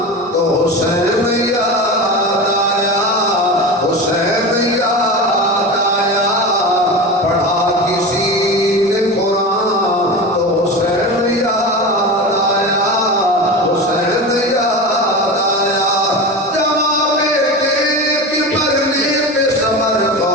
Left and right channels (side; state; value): both; normal; correlation 0.27